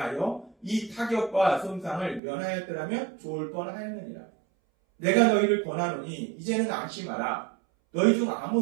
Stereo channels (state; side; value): drops out; left; at 2.2 s